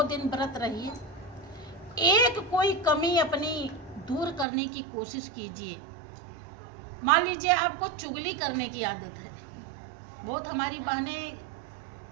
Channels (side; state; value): left; drops out; at 4.5 s